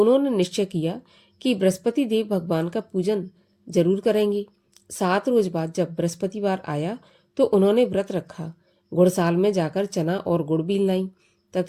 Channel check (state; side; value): identical; both; correlation 1.00